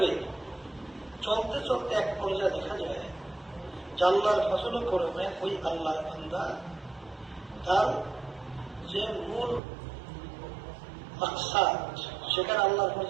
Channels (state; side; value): drops out; left; at 9.6 s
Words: চলতে চলতে এক পর্যায়ে দেখা যায় যে আল্লাহর ফজল করমে ওই আল্লাহর বান্দা তার যে মূল মাকসাদ সেখানে আল্লাহর